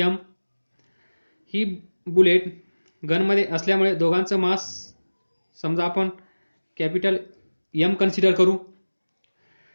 m, ही बुलेट गनमध्ये असल्यामुळे दोघांचं मास समजा आपण कॅपिटल M कन्सिडर करू.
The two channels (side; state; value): both; inverted; correlation -1.00